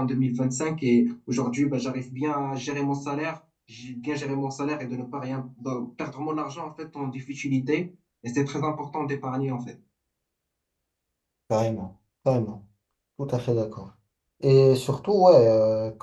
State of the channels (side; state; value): both; identical; correlation 1.00